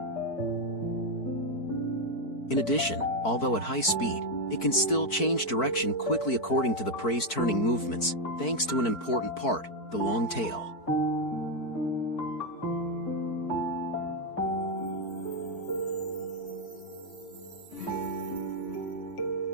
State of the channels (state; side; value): late; right; 4.5 ms